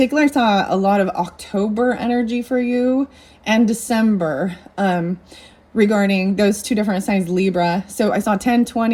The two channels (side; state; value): both; identical; correlation 1.00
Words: I saw a lot of October energy for you and December regarding those two different signs, Libra. So I saw